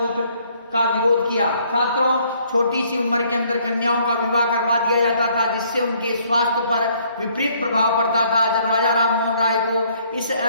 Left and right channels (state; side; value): inverted; both; correlation -0.64